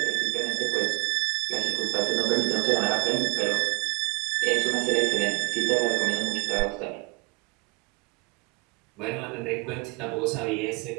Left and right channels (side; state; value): left; quieter; 27.4 dB